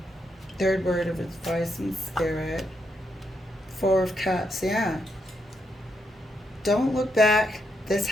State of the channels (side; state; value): both; normal; correlation 0.80